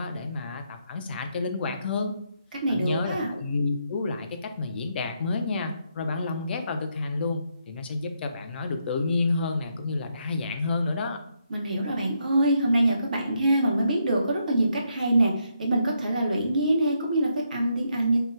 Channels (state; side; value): inverted; both; correlation -0.77